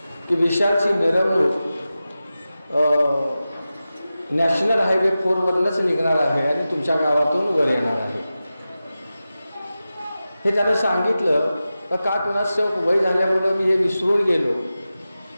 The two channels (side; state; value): both; inverted; correlation -0.94